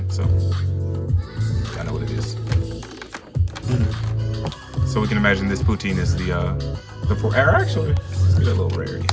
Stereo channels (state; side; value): identical; both; correlation 1.00